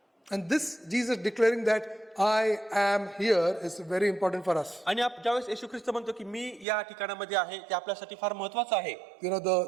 And this Jesus declaring that I am here is very important for us. आणि ज्यावेळेस येशू ख्रिस्त म्हणतो की मी या ठिकाणामध्ये आहे ते आपल्यासाठी फार महत्वाचं आहे. You know,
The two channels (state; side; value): drops out; left; at 6.7 s